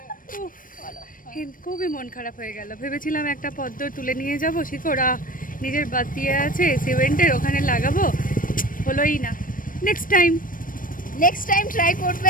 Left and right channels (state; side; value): late; right; 0.40 ms